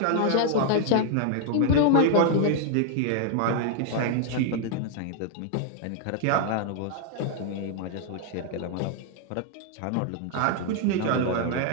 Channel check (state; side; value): different; both; correlation 0.00